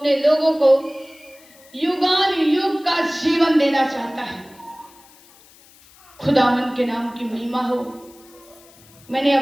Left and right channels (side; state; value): left; noise; hiss, 26 dB below the sound